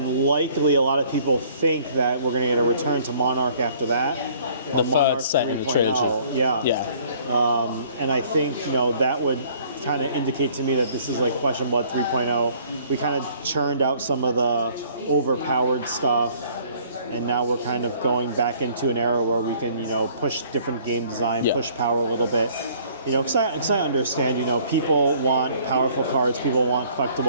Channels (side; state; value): both; inverted; correlation -0.57